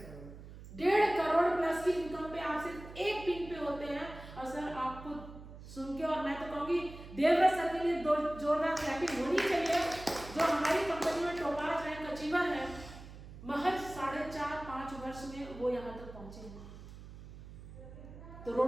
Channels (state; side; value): noise; right; hum, 15 dB below the sound